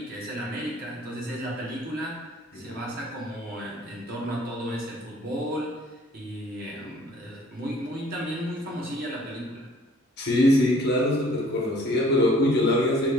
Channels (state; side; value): normal; both; correlation 0.55